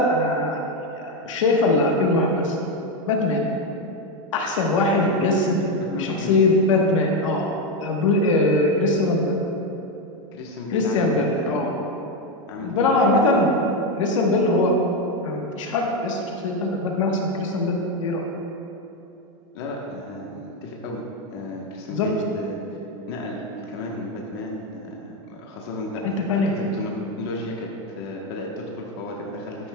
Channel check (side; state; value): both; normal; correlation 0.08